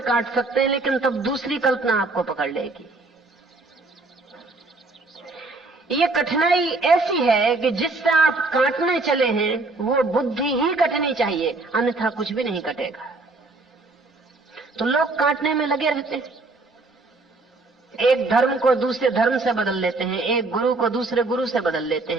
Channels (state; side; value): quieter; left; 3.3 dB